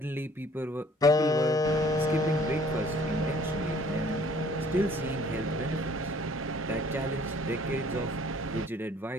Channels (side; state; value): both; normal; correlation 0.57